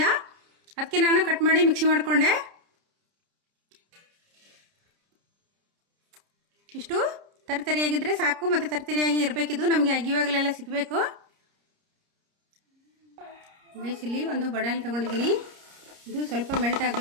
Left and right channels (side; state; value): left; late; 30 ms